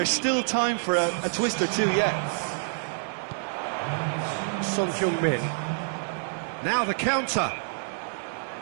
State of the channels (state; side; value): silent; left; digital silence